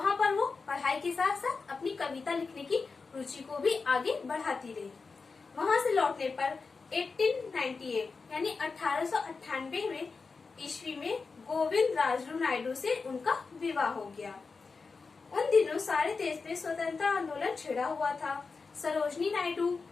पर वो पढ़ाई के साथ साथ अपनी कविता लिखने की रुचि को भी आगे बढ़ाती रही। वहाँ से लौटने पर 1898 यानी 1898 में ईस्वी में गोविंद राजरू नायडू से उनका विवाह हो गया। उन दिनों सारे देश में स्वतंत्रता आंदोलन छिड़ा हुआ था। सरोजनी नायडू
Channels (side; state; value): right; quieter; 4.5 dB